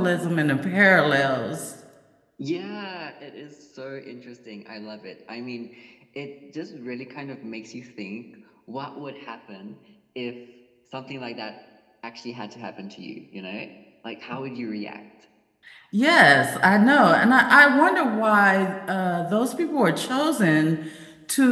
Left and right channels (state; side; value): identical; both; correlation 1.00